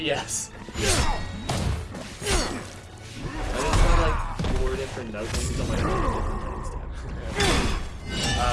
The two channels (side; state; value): both; identical; correlation 1.00